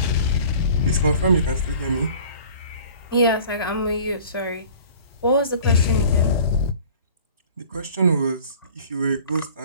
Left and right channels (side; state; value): both; inverted; correlation -0.47